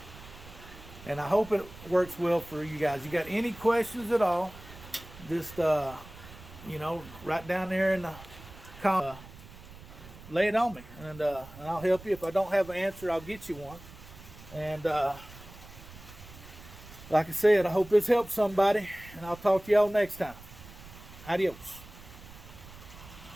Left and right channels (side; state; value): right; noise; rumble, 18 dB below the sound